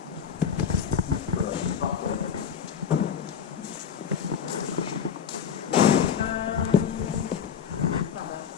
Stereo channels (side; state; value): right; quieter; 7.4 dB